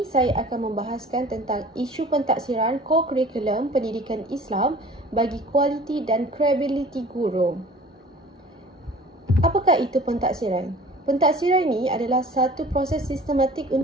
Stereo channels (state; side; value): normal; both; correlation 0.45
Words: saya akan membahaskan tentang isu pentaksiran co-curriculum pendidikan Islam bagi kualiti dan kredibiliti guru. Apakah itu pentaksiran? Pentaksiran ini adalah satu proses sistematik